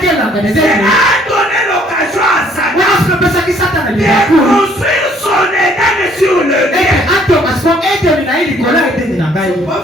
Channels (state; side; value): normal; both; correlation 0.62